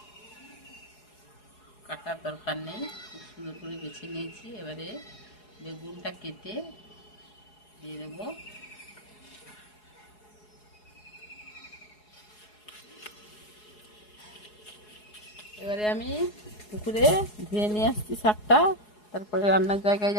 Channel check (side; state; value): right; late; 4.8 ms